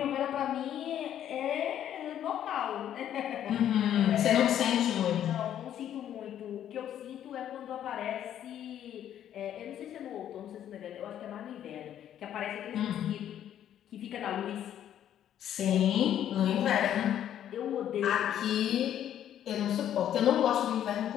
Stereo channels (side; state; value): right; quieter; 10.6 dB